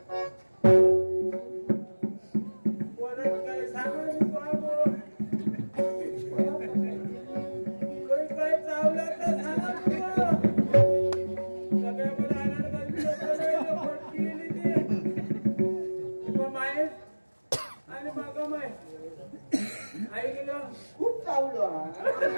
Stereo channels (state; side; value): inverted; both; correlation -1.00